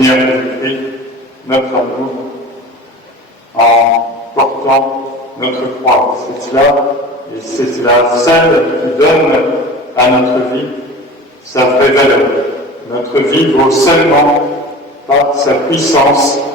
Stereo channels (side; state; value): both; normal; correlation 0.37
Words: Jésus-Christ notre amour en portant notre croix. C'est cela, et c'est cela seule qui donne à notre vie sa vraie valeur. Notre vie vaut seulement par sa puissance